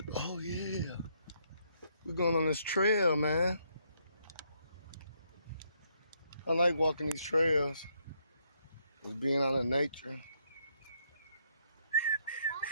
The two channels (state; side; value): inverted; both; correlation -0.74